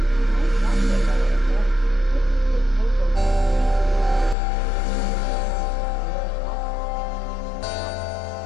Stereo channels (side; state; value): right; drops out; at 4.4 s